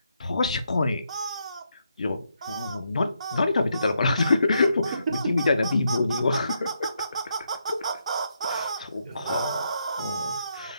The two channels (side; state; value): both; inverted; correlation -0.79